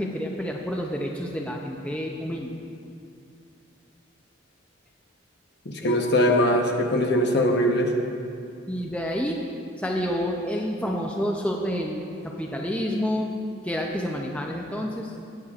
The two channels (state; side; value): normal; both; correlation 0.47